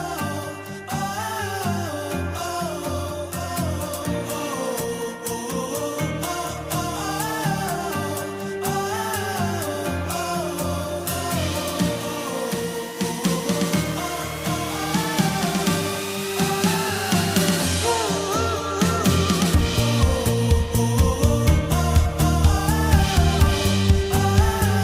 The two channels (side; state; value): both; identical; correlation 1.00